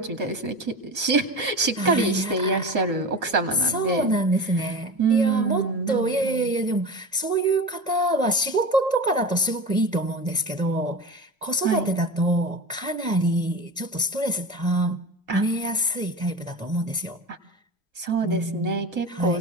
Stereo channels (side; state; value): both; normal; correlation 0.30